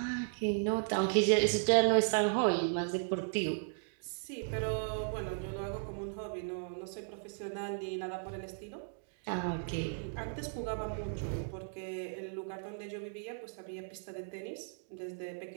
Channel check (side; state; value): left; silent; digital silence